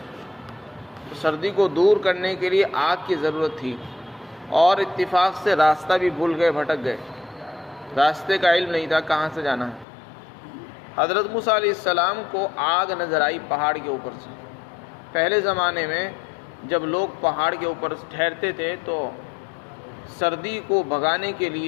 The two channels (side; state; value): right; drops out; at 9.9 s